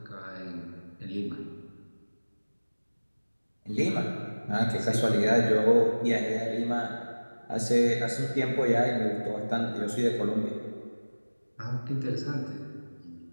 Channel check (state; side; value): inverted; both; correlation -1.00